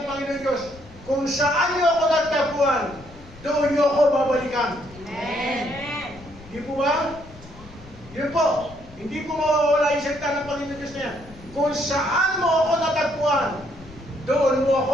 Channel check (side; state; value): left; noise; rumble, 20 dB below the sound